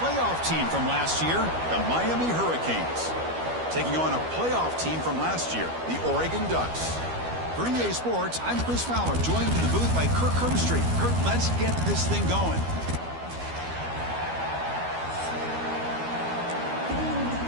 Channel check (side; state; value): left; late; 12 ms